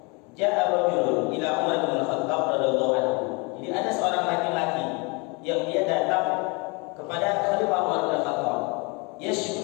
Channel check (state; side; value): quieter; right; 29.9 dB